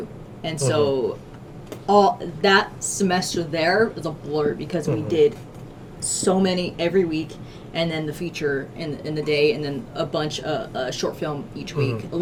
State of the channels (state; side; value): identical; both; correlation 1.00